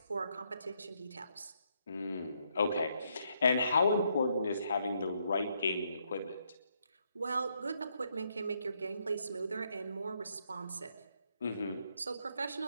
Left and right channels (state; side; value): inverted; both; correlation -0.75